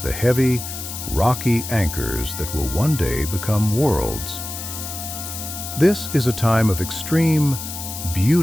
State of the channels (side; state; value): left; noise; hiss, 8 dB below the sound